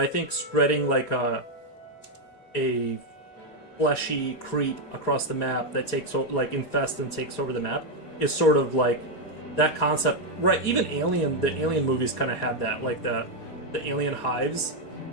think spreading like a fleshy creep across the map that takes like infests and takes over the map is sort of like that concept, right? Even the Alien movies kind of had that, like the alien hives.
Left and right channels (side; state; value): right; late; 4.2 ms